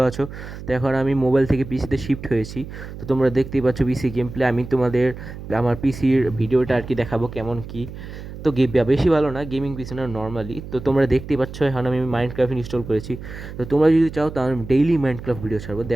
আছো। তো এখন আমি মোবাইল থেকে পিসিতে শিফট হয়েছি। তো তোমরা দেখতেই পাচ্ছ পিসি গেম প্লে। আমি তোমাদের আমার পিসির ভিডিওটা আর কি দেখাবো কেমন কি। তো বেশি ভালো না, গেমিং পিসি না, নর্মালি। তো তোমরা দেখতেই পাচ্ছ এখন আমি মাইনক্রাফট ইনস্টল করেছি। তো তোমরা যদি চাও তাহলে আমি ডেইলি মাইনক্রাফট ভিডিও ছাড়বো,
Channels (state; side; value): noise; right; hum, 12 dB below the sound